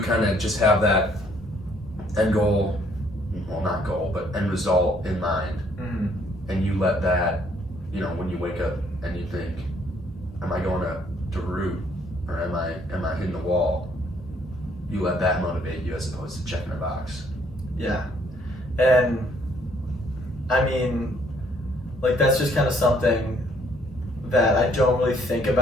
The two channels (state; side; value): normal; both; correlation 0.65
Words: kind of just have that end goal, well, not goal, but end result in mind, and you let that, when you wake up and you think, am I going to root, or am I hitting the wall? You let that motivate you as opposed to checking a box. Yeah, and I mean, like that's just kind of something that I don't really think